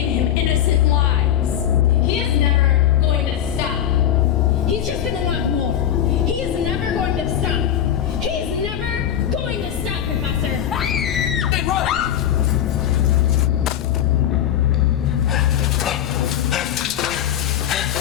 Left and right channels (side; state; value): right; quieter; 10.4 dB